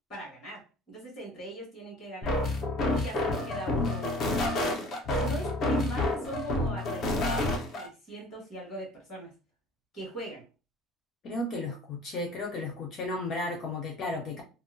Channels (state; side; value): normal; both; correlation 0.47